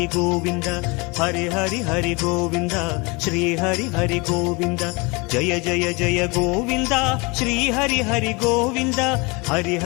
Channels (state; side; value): quieter; right; 27.4 dB